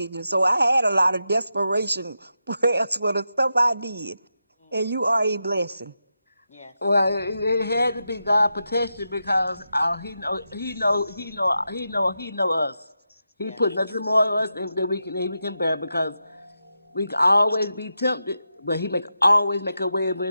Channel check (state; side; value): inverted; both; correlation -0.87